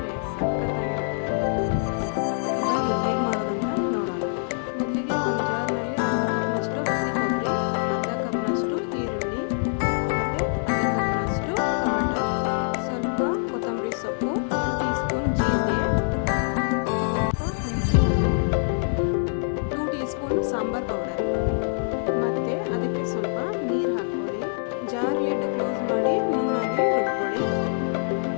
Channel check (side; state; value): right; silent; digital silence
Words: ಸಖತ್ತಾಗಿರುತ್ತೆ. ಬನ್ನಿ ಹೇಗೆ ಮಾಡೋದಂತ ನೋಡೋಣ. ಮೊದಲಿಗೆ ಒಂದು ಜಾರ್ನಲ್ಲಿ ಅರ್ಧ ಕಪ್ನಷ್ಟು ಹಸಿ ಕೊಬ್ಬರಿ, ಅರ್ಧ ಕಪ್ನಷ್ಟು ಈರುಳ್ಳಿ ಮತ್ತು ಅರ್ಧ ಕಪ್ನಷ್ಟು ಟೊಮೆಟೊ, ಸ್ವಲ್ಪ ಕೊತ್ತಂಬರಿ ಸೊಪ್ಪು, 1 ಟೀ ಸ್ಪೂನ್ ಜೀರಿಗೆ, ಸ್ವಲ್ಪ ಹುಣಸೆ ಹಣ್ಣು, 2 ಟೀ ಸ್ಪೂನ್ ಸಾಂಬಾರ್ ಪೌಡರ್ ಮತ್ತು ಅದಕ್ಕೆ ಸ್ವಲ್ಪ ನೀರು ಹಾಕ್ಕೊಳ್ಳಿ. ಜಾರ್ ಲಿಡ್ ಕ್ಲೋಸ್ ಮಾಡಿ ನುಣ್ಣಾಗಿ ರುಬ್ಕೊಳ್ಳಿ.